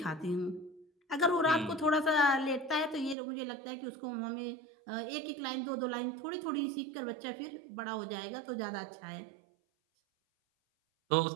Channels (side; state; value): left; drops out; at 3.2 s